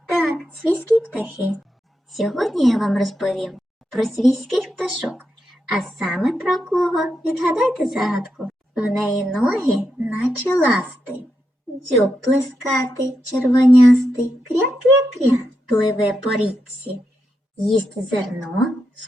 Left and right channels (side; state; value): both; normal; correlation 0.85